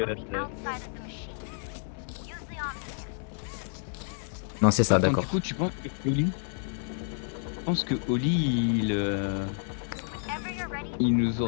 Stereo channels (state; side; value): silent; right; 58 dB below the other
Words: on the that's outside of the machine. Use the omni. Non, c'est ça, Attends, d'accord. du coup tu penses que Oli... Je pense que Oli Whenever you're ready, il nous